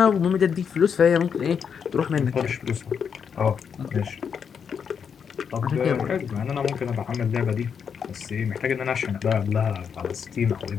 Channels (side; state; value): right; quieter; 6.9 dB